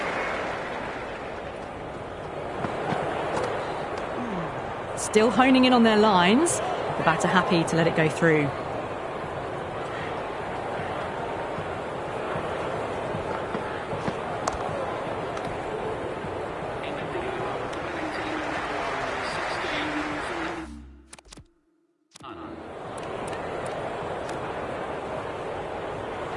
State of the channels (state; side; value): identical; both; correlation 1.00